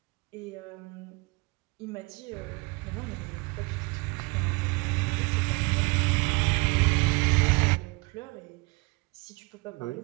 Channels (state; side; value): quieter; left; 26.8 dB